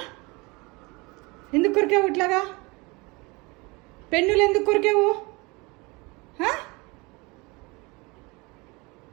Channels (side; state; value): left; quieter; 26.0 dB